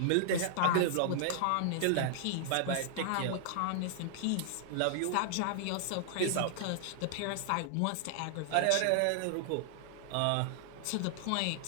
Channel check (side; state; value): both; different; correlation -0.01